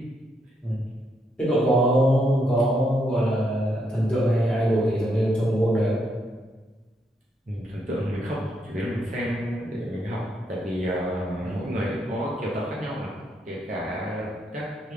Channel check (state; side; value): normal; both; correlation 0.77